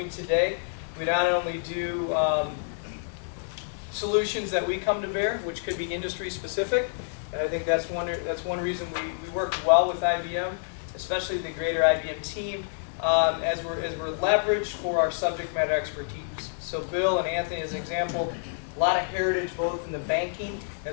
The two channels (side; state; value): right; silent; 59 dB below the other